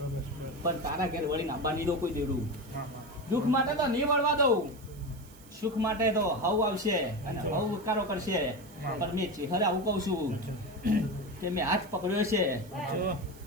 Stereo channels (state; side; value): noise; right; hiss, 23 dB below the sound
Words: પણ તારા ઘેર વળીને આંબા નહીં દો કોઈ દેડું. દુઃખ માટે તો નહીં વળવા દઉં, સુખ માટે તો હવ આવશે અને હવ ઉકારો કરશે. પણ મેં ચેહરે આવું કહું છું કે મેં હાથ પકડ્યો છે